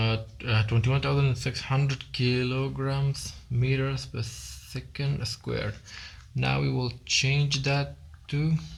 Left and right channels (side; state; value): both; identical; correlation 1.00